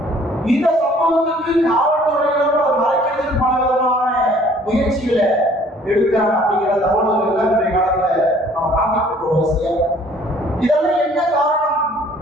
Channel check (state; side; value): normal; both; correlation 0.57